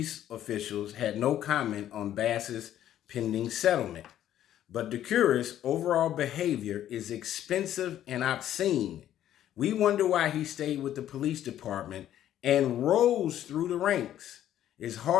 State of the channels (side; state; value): right; quieter; 11.7 dB